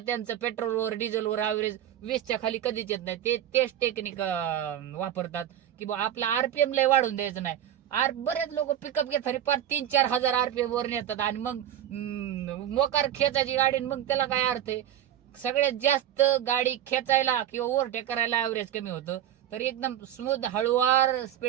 पेट्रोलवर डिझेलवर ऍव्हरेज 20च्या खाली कधीच येत नाही. तेच टेक्निक वापरतात की बा आपला RPM लय वाढून द्यायचं नाही. बरेच लोक पिकअप घेतात पार 3-4 हजार RPM वर नेतात आणि मग मोकार खेचायची गाडी, मग त्याला काय अर्थ आहे? सगळ्यात जास्त गाडी खेचायला किंवा ओव्हरटेक करायला ऍव्हरेज कमी होतं. तर एकदम स्मूथ हळूवार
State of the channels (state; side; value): quieter; left; 11.0 dB